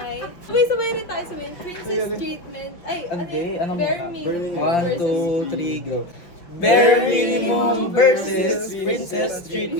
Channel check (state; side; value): late; right; 5.5 ms